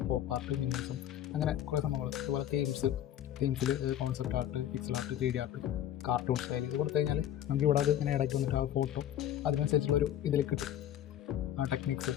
pop art, minimalism, അങ്ങനെ കുറേ സംഭവങ്ങൾ. അതുപോലെ തീംസിൽ concept art, pixel art, 3D art, cartoon style ഇത് കൊടുത്തു കഴിഞ്ഞാൽ നമുക്ക് ഇവിടെ അത് ഇങ്ങനെ ഇടയ്ക്ക് വന്നിട്ട് ആ ഫോട്ടോ അതിനനുസരിച്ചുള്ളൊരു ഇതിൽ കിട്ടും. ടെക്നിക്സ്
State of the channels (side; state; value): right; quieter; 11.2 dB